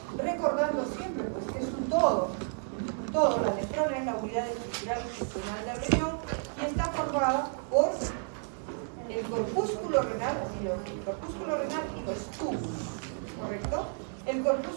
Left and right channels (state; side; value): silent; left; 57 dB below the other